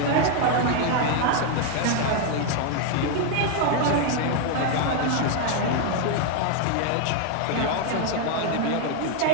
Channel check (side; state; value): both; different; correlation 0.00